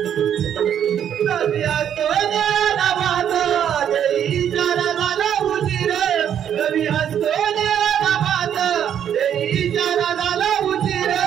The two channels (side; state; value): left; quieter; 9.3 dB